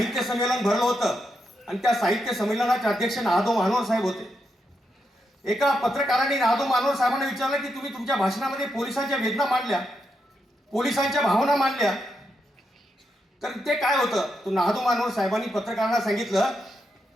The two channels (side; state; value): both; normal; correlation 0.83